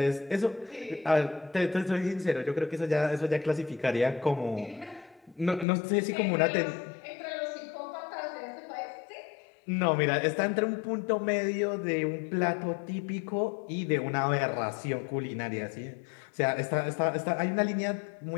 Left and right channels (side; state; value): right; drops out; at 5.7 s